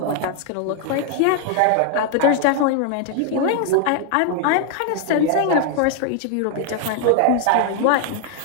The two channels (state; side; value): different; both; correlation 0.00